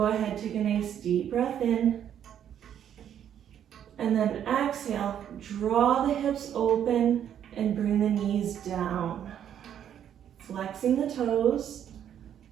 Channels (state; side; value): quieter; left; 9.6 dB